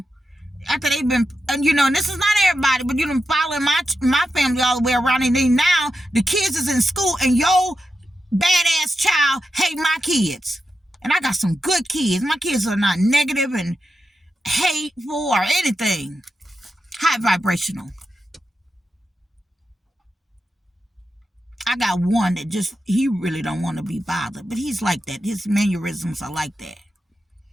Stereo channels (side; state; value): both; normal; correlation 0.89